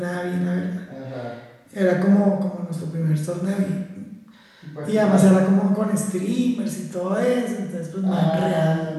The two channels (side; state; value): both; identical; correlation 1.00